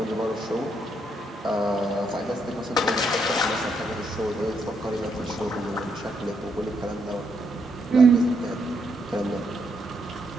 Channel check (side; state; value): both; normal; correlation 0.76